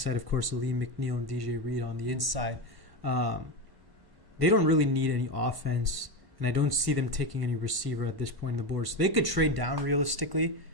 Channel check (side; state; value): left; late; 1.3 ms